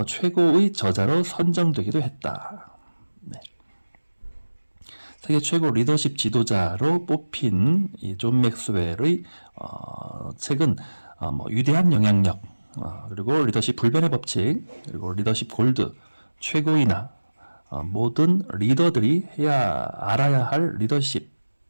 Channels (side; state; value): both; inverted; correlation -1.00